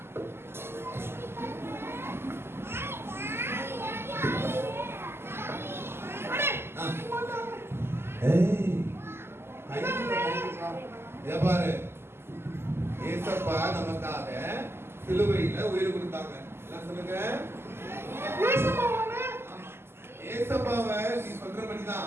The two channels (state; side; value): late; left; 0.12 ms